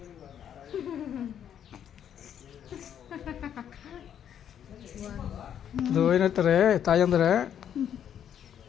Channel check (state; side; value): quieter; right; 9.3 dB